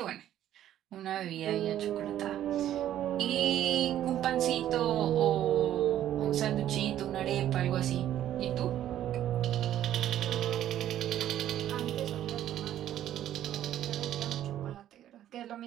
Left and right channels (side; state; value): left; quieter; 11.8 dB